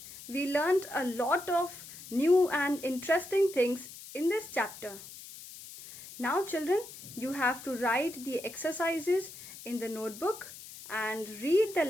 We learned a lot of new and interesting things in this chapter. Now children, you have to write the exercises in the notebook and read the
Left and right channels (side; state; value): left; noise; hiss, 15 dB below the sound